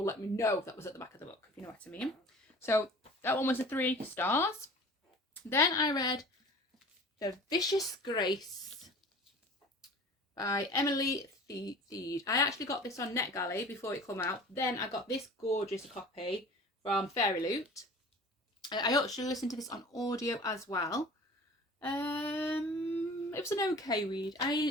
let me know if that was at the back of the book, if you know what I mean. So that one was a 3 stars. Then I read The Vicious Grace by Emily Theed. I actually got this on NetGalley before it come out. Then I got this gorgeous copy from Fairy Loot. I actually listened to this on audio as well. It was an okay read.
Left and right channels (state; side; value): normal; both; correlation 0.42